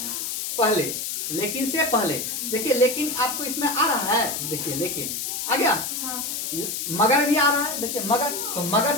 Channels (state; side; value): noise; left; hiss, 3 dB below the sound